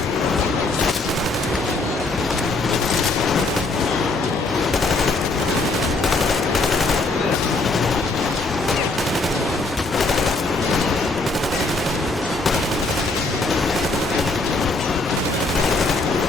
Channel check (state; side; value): quieter; right; 3.2 dB